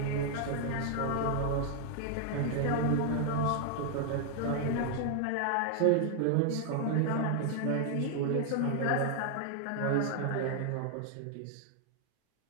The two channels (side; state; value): both; different; correlation 0.00